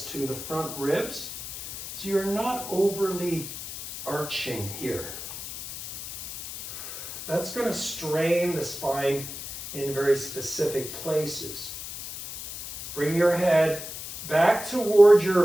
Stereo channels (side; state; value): left; noise; hiss, 9 dB below the sound